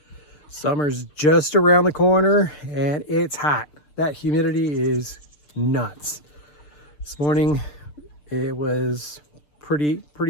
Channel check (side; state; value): right; late; 6.8 ms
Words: Summer's just around the corner and it's hot. That humidity is nuts. This morning it was pretty